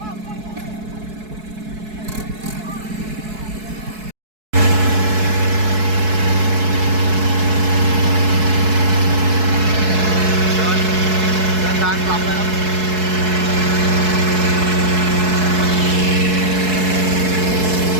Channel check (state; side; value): late; left; 4.7 ms